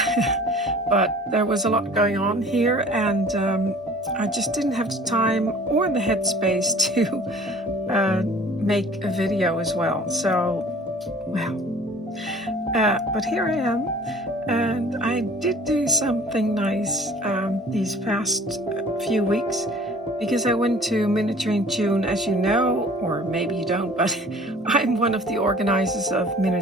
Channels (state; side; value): normal; both; correlation 0.48